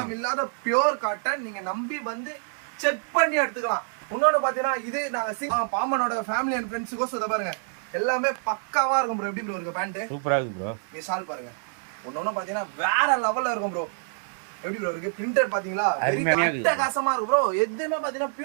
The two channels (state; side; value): silent; left; digital silence